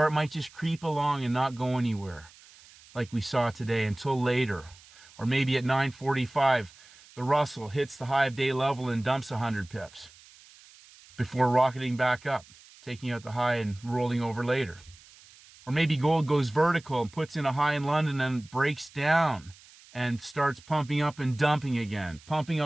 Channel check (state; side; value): noise; right; hiss, 24 dB below the sound